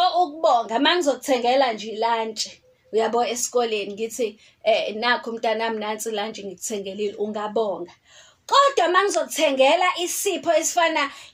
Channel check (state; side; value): identical; both; correlation 1.00